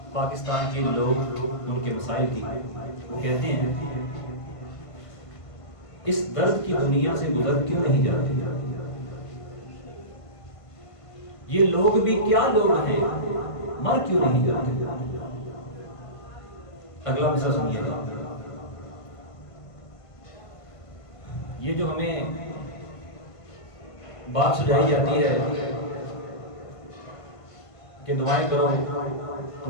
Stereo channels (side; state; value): right; late; 1.5 ms